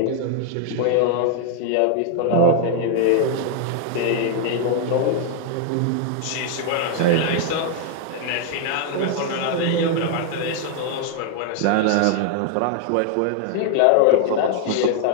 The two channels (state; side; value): different; both; correlation 0.00